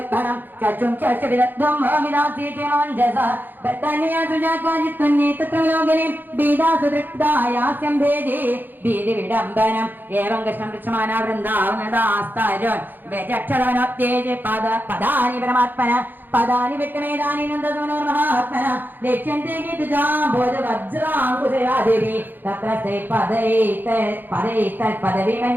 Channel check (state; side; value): late; left; 0.090 ms